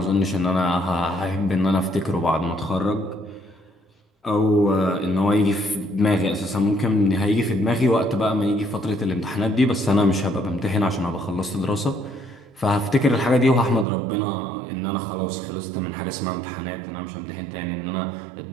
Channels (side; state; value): left; drops out; at 13.9 s